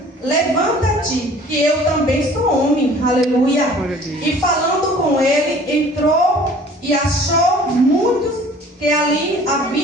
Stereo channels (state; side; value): normal; both; correlation 0.50